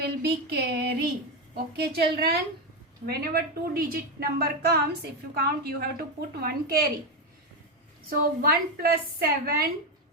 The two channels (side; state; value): both; normal; correlation 0.10